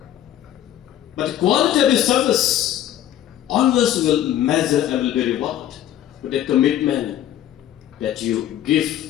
But the quality of your service always will measure and will be rewarded with the commitment that you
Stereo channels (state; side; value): quieter; right; 11.8 dB